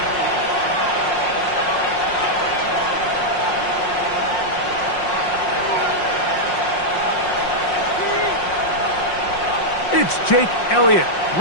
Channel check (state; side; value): late; right; 5.6 ms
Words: It's Jake Elliott,